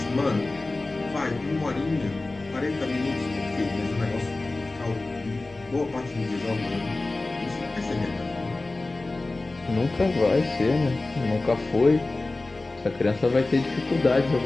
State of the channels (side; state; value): right; quieter; 3.1 dB